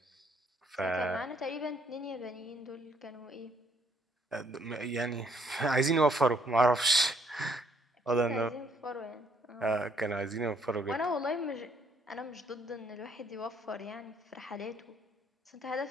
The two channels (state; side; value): normal; both; correlation 0.67